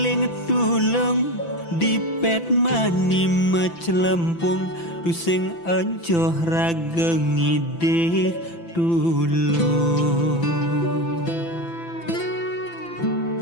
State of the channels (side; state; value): right; late; 5.9 ms